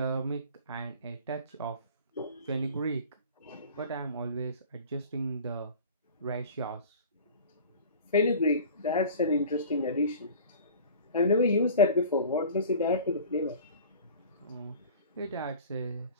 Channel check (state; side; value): inverted; both; correlation -0.41